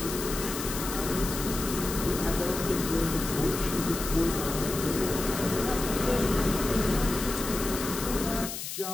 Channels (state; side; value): noise; left; hiss, 6 dB below the sound